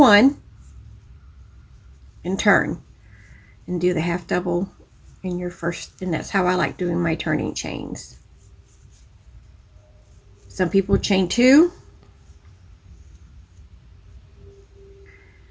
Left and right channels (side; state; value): both; identical; correlation 1.00